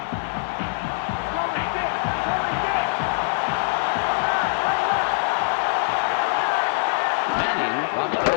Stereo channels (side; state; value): right; silent; 60 dB below the other